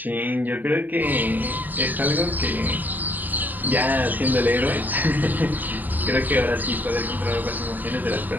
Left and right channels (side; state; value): left; late; 0.087 ms